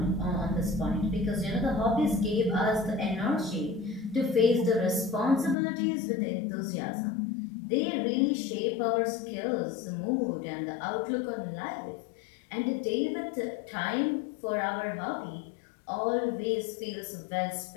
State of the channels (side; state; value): right; drops out; at 5.6 s